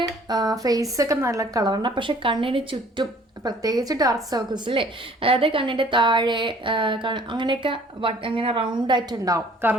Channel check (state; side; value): normal; both; correlation 0.55